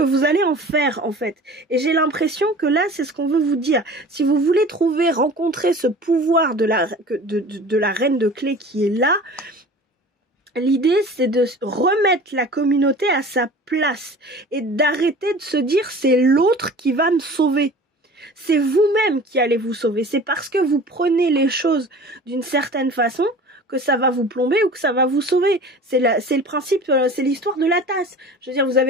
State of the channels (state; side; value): normal; both; correlation 0.41